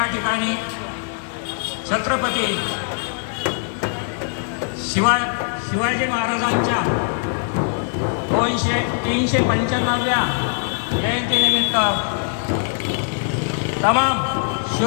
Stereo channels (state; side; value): silent; right; 65 dB below the other